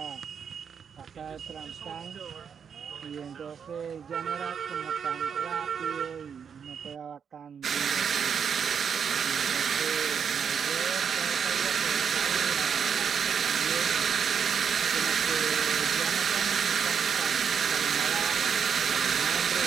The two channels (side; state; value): left; quieter; 7.1 dB